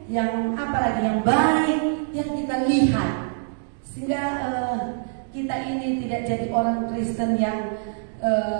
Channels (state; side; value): silent; left; digital silence